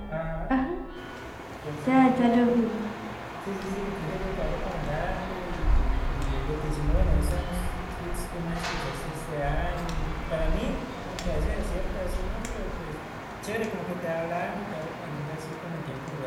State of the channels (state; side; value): identical; both; correlation 1.00